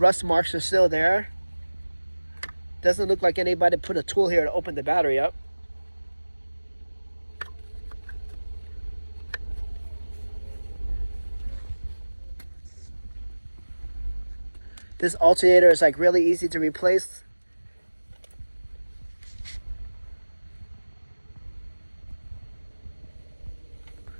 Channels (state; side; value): inverted; both; correlation -1.00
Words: marks are still there. Doesn't look like anybody put a tool here to open the battery up. This alternator is like really easy to replace.